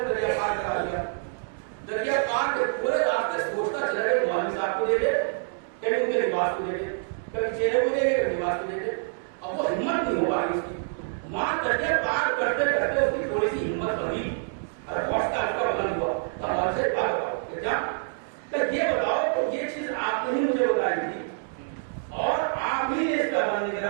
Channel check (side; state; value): left; silent; digital silence